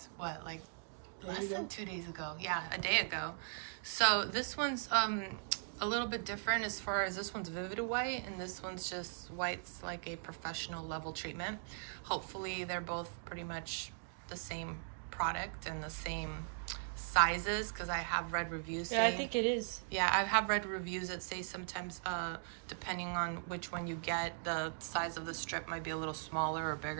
what, like less than 2 days ago. Yeah, a day ago. So this one's a little bit different as far as this one's Vivid White and this one's just white's like a professional level treatment. Hopefully they're both pretty much the same product and the same sizes, because I have read reviews saying, yeah, I think it is. Yeah, I have read reviews that say sometimes depending on which one you get, the size of the strip might be a little smaller or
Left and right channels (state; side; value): silent; left; digital silence